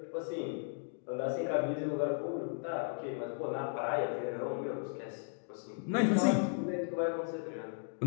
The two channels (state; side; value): silent; right; digital silence